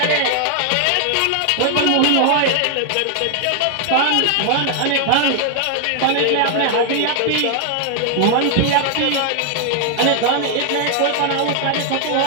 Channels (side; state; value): both; different; correlation 0.00